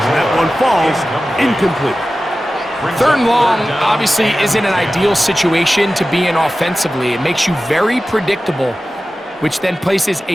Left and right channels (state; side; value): normal; both; correlation 0.95